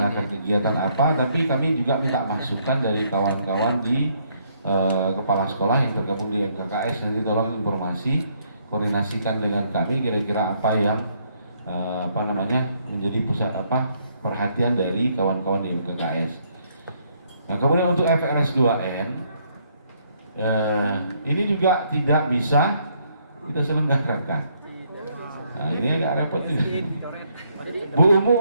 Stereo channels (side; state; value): both; inverted; correlation -0.70